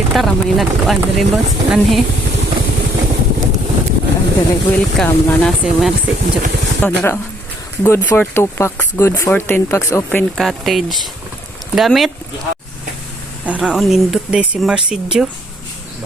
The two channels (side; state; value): both; normal; correlation 0.66